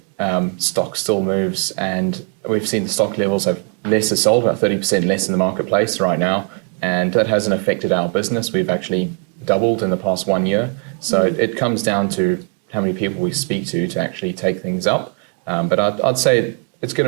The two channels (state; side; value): quieter; left; 36.4 dB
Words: stock still moves, and we've seen the stock levels have less are sold, about 30% less in the marketplace right now. And that hasn't affected our business. We've actually doubled in the past 1 year. So it comes down to how many people we speak to actually take things up. But I'd say it's going